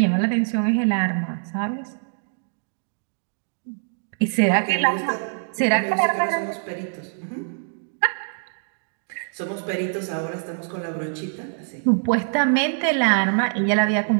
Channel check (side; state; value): left; silent; digital silence